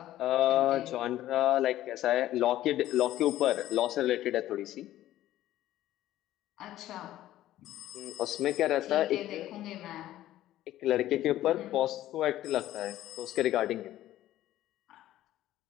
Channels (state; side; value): quieter; right; 13.9 dB